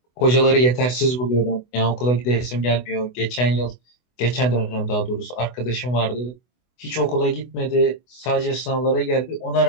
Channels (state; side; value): late; right; 24 ms